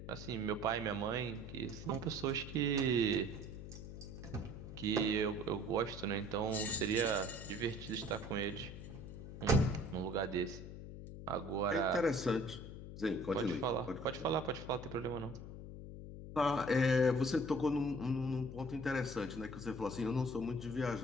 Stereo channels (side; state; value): left; noise; hum, 11 dB below the sound